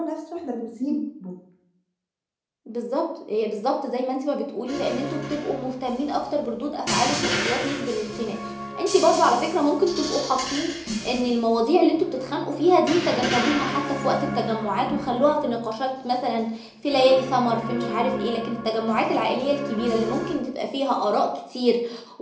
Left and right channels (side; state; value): both; identical; correlation 1.00